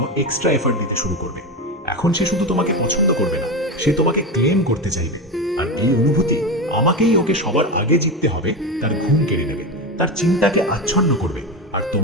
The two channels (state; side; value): normal; both; correlation 0.18